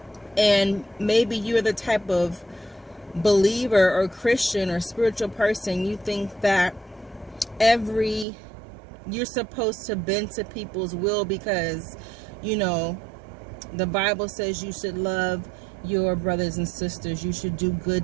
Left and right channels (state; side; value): drops out; left; at 8.2 s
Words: And maybe you're the type of believer or Christian or spiritual person, you think that you're supposed to bend to people's will because the Bible says you should love your brothers and sisters, you should do